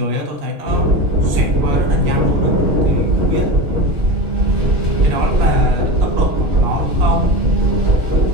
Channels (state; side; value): late; left; 2.9 ms